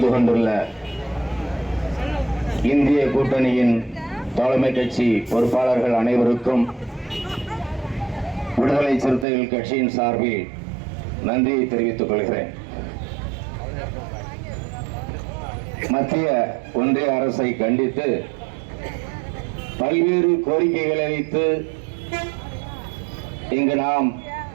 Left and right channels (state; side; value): drops out; left; at 9.2 s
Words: கொண்டுள்ள இந்திய கூட்டணியின் தலைமை கட்சி பொறுப்பாளர்கள் அனைவருக்கும் விடுதலை சிறுத்தைகள் கட்சியின் சார்பில் நன்றியை தெரிவித்துக் கொள்கிறேன். மத்திய ஒன்றிய அரசை கண்டித்து பல்வேறு கோரிக்கைகளை வைத்து இங்கு நாம்